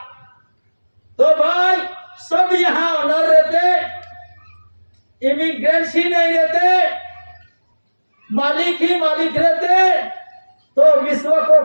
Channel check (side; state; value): both; inverted; correlation -1.00